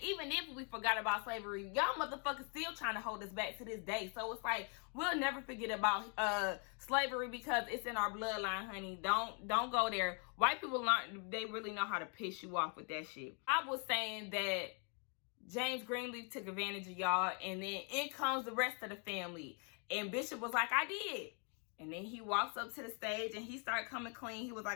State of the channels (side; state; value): right; quieter; 39.0 dB